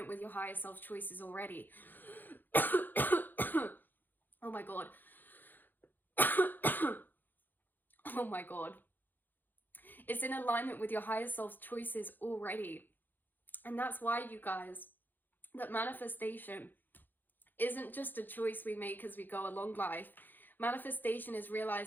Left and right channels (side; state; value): right; late; 0.089 ms